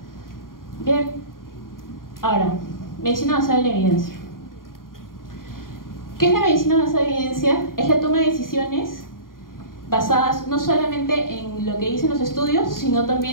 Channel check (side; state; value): right; late; 0.91 ms